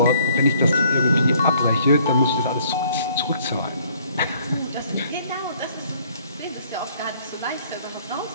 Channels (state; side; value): inverted; both; correlation -0.61